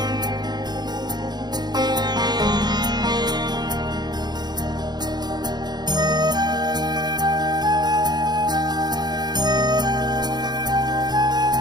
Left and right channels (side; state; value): left; late; 0.20 ms